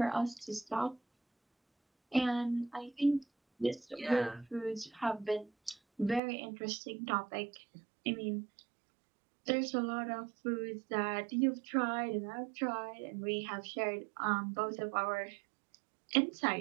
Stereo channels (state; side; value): drops out; left; at 6.2 s